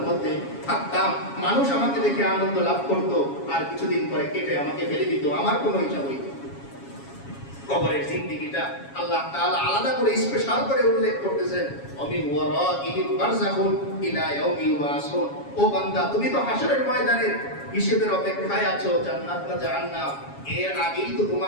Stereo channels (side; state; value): right; late; 7.3 ms